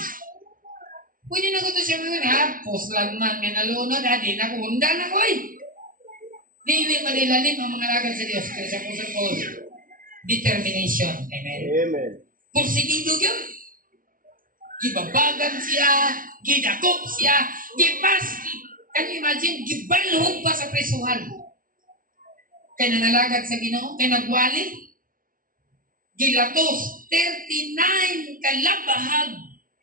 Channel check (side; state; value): left; late; 0.40 ms